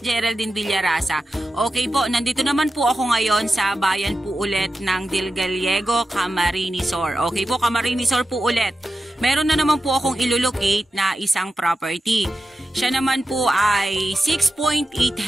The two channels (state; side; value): normal; both; correlation 0.91